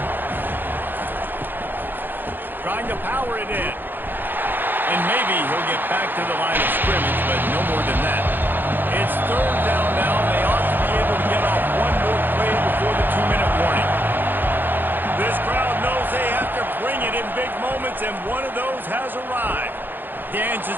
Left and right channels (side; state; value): left; late; 0.092 ms